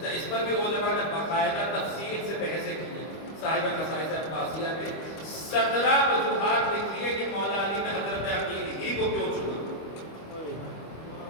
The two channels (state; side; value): late; right; 25 ms